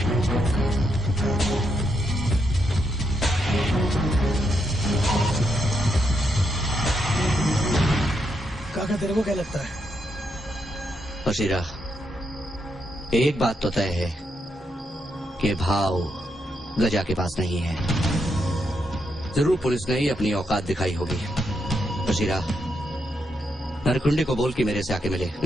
काका तेरे को क्या लगता है? बशीरा, एक बात तो तय है कि भाव गजा के पास नहीं है। जरूर पुलिस ने ही अपनी औकात दिखाई होगी। बशीरा, नरकुंडे को बोल कि मेरे से आके मिले।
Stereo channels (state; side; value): normal; both; correlation 0.80